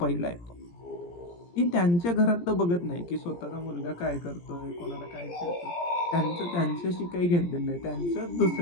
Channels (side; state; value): right; late; 17 ms